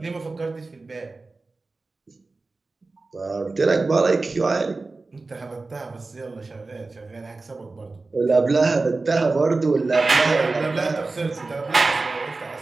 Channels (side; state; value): left; quieter; 3.6 dB